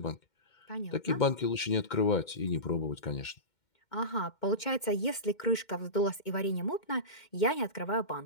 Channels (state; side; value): late; right; 2.1 ms